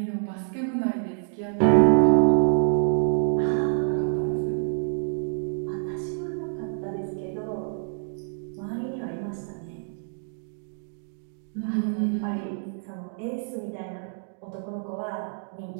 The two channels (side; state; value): left; silent; digital silence